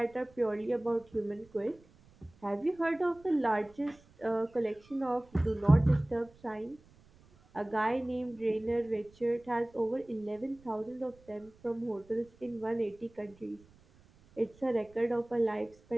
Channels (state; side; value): noise; right; rumble, 28 dB below the sound